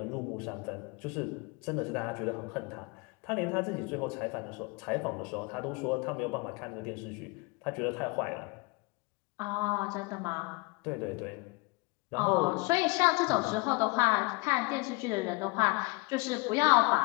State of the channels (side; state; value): right; quieter; 26.7 dB